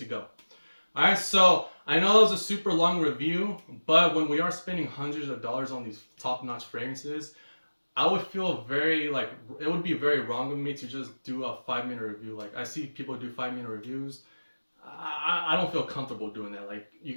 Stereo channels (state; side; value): inverted; both; correlation -1.00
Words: go. All right, so I know that was a super long review, but when we are spending hundreds of dollars on these top-notch fragrances, I would feel very like it would be very wrong of me to just do a 5-minute review. Like I see people do 5-minute reviews. I don't feel comfortable doing that. Like you're